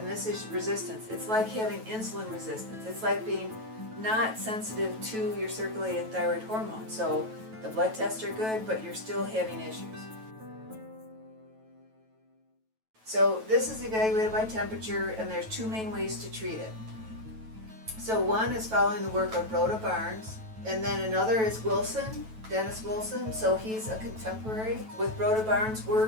this is resistance. It's like having insulin resistance. It's like being not sensitive to your circulating thyroid hormone. So the blood tests are good, but you're still having issues. So this is evaluated by temperature, and there's two main ways to treat it. So one is following the work of Rhoda Barnes, and then another is Wilson, Dennis Wilson. So he's a contemporary. With Rhoda Barnes'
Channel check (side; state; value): left; late; 9.2 ms